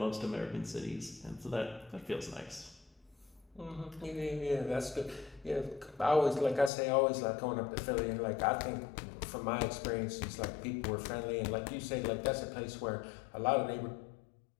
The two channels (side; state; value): right; drops out; at 6.7 s